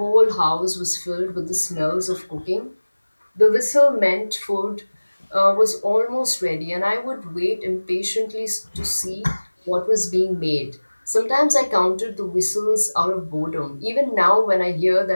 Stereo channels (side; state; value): both; inverted; correlation -1.00